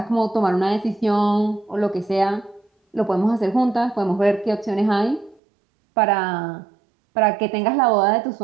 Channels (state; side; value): drops out; left; at 5.4 s